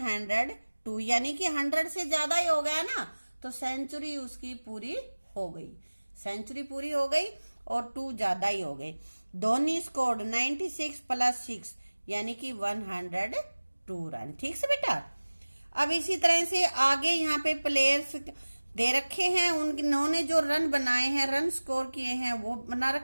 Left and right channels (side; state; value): both; inverted; correlation -1.00